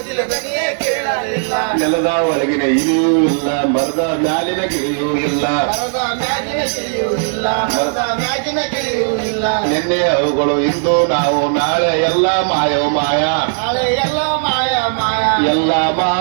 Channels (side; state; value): left; silent; 69 dB below the other